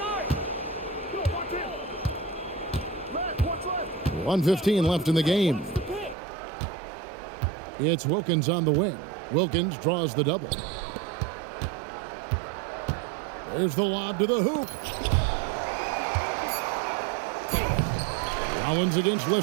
1:15 left in the game. It's Wilkins on the wing. Wilkins draws the double. There's the lob to the hoop. Rollins against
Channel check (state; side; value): drops out; left; at 6.2 s